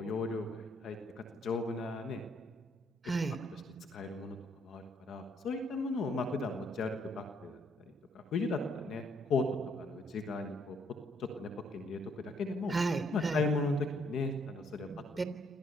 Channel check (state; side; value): normal; both; correlation 0.68